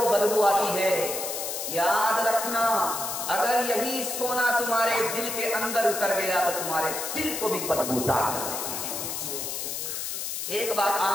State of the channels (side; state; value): left; noise; hiss, 4 dB below the sound